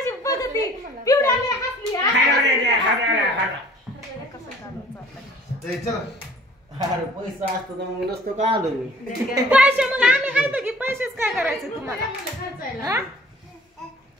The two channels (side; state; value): both; normal; correlation 0.51